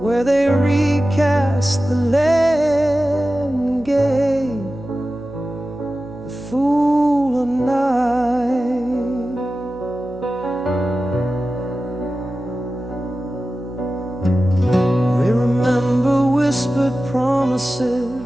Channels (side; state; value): right; noise; hum, 21 dB below the sound